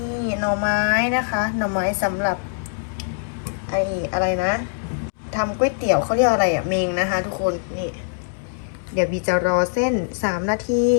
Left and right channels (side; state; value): right; silent; digital silence